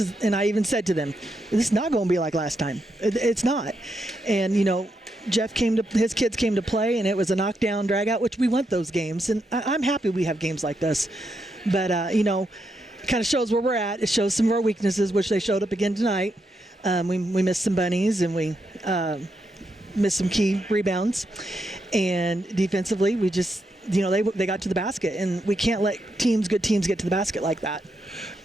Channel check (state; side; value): normal; both; correlation 0.82